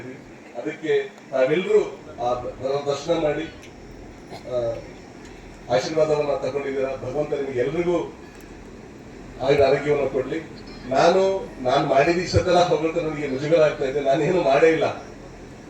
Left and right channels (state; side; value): identical; both; correlation 1.00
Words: ಅದಕ್ಕೆ ನಾವೆಲ್ಲರೂ ಆ ದರ್ಶನ ಮಾಡಿ ಆಶೀರ್ವಾದವನ್ನ ತಗೊಂಡಿದ್ದೀರ. ಭಗವಂತ ನಿಮಗೆ ಎಲ್ರಿಗೂ ಆರೋಗ್ಯವನ್ನು ಕೊಡ್ಲಿ. ನಾನು ಮಾಡಿದ ಇಷ್ಟೆಲ್ಲ ಭಗವಂತ ನನಗೆ ಮುಜುಗರ ಆಗ್ತಾ ಇದೆ. ನಾನೇನು ಮಾಡೇ ಇಲ್ಲ.